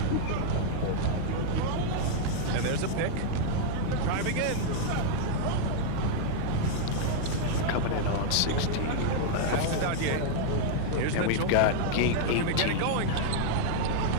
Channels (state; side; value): different; both; correlation 0.00